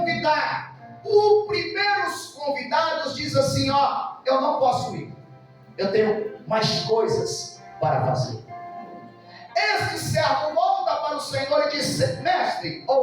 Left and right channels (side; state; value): both; identical; correlation 1.00